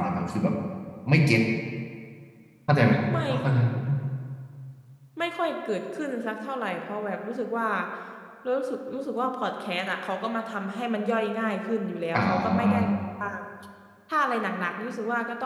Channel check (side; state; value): both; identical; correlation 1.00